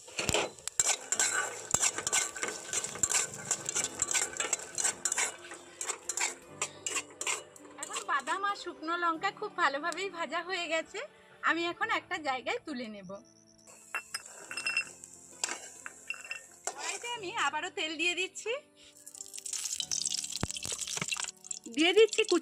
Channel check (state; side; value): identical; both; correlation 1.00